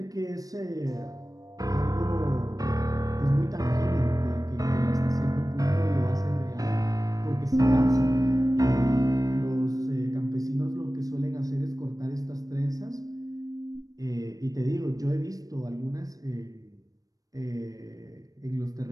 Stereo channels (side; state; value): left; late; 0.18 ms